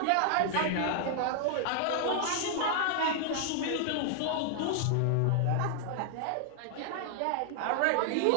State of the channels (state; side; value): different; both; correlation 0.00